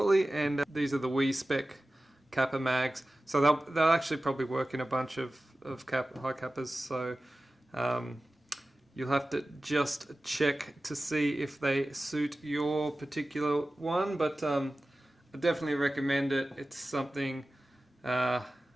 And these are the Wii spec Kappa mags, so they'll actually probably work in a bunch of high Kappas. So you'll have to just check to see if they suit your particular one. But I definitely recommend it. It's something I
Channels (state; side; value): normal; both; correlation 0.96